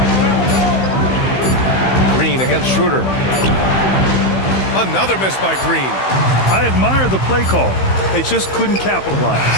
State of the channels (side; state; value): right; late; 15 ms